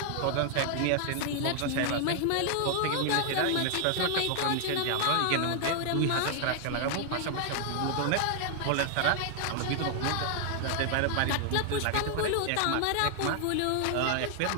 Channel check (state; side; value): different; both; correlation 0.00